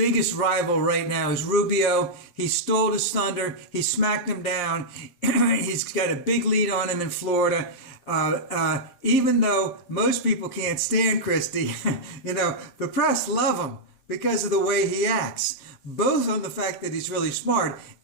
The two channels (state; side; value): late; right; 7.5 ms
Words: rival right now is Rubio. He stole his thunder. He smacked him down. He's got a big lead on him in Florida. Even though most people can't stand Christie, you know, the press love him because of the way he acts. Both on the fact that he's really smart